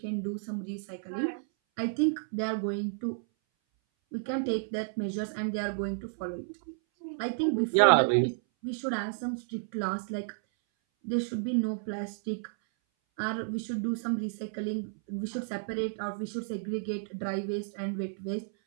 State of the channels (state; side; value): silent; left; 57 dB below the other